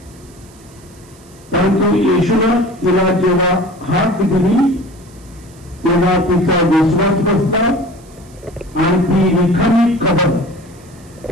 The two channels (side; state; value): right; noise; hiss, 27 dB below the sound